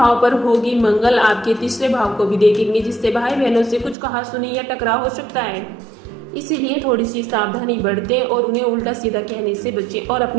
पर होगी। मंगल आपके 3 भाव को भी देखेंगे, जिससे भाई बहनों से कुछ कहासुनी या टकराव हो सकता है। इसीलिए थोड़ी सी सावधानी बरतें और उन्हें उल्टा सीधा कहने से बचें और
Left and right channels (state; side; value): drops out; left; at 4.0 s